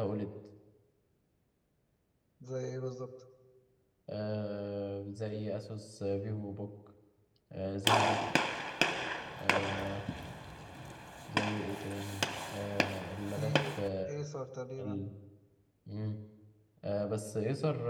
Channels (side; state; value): both; identical; correlation 1.00